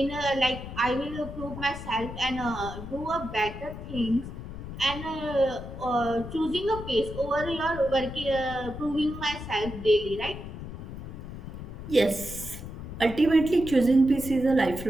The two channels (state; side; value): noise; left; rumble, 10 dB below the sound